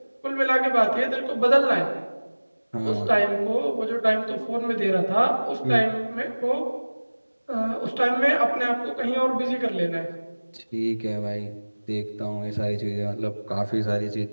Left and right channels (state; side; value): inverted; both; correlation -1.00